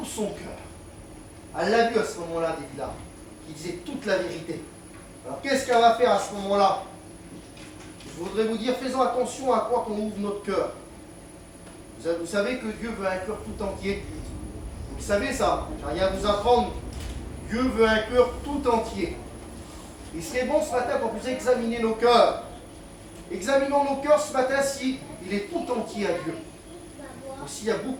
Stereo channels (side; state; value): both; identical; correlation 1.00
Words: son cœur. Elle l'a vu à ce moment-là, Delilah, qui disait toute la vérité. Alors qu'est-ce qu'elle va faire à ce moment-là? Je voudrais vous dire, faisons attention à quoi qu'on ouvre notre cœur. Vous savez que Dieu veut un cœur tout entier. Vous savez ça, j'ai rien à vous apprendre. Dieu veut un cœur tout entier. Il serait bon ce matin pour vous examiner nos cœurs. Examinons nos cœurs ce matin si il est tout entier à Dieu. Ou s'il y a